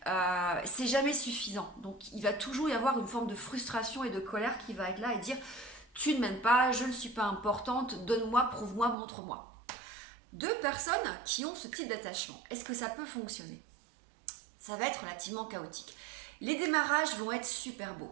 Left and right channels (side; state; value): left; drops out; at 9.0 s